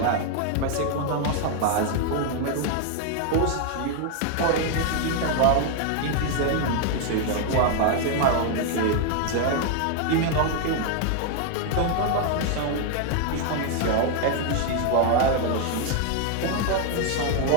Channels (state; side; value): different; both; correlation 0.00